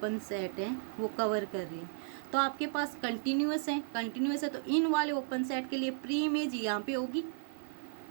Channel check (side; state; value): left; silent; 55 dB below the other